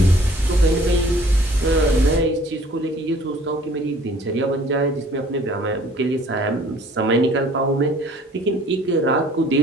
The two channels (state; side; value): normal; both; correlation 0.54